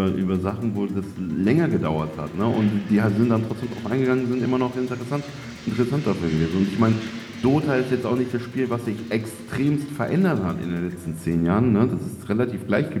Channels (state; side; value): identical; both; correlation 1.00